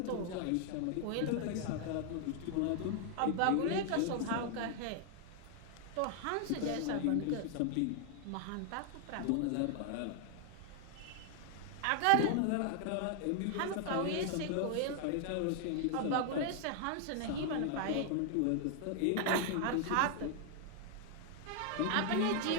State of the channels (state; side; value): different; both; correlation 0.00